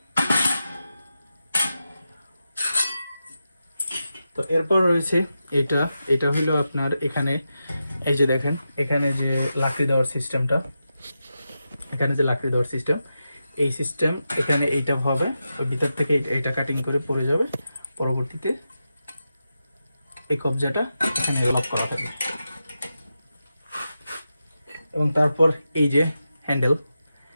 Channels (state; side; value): inverted; both; correlation -0.89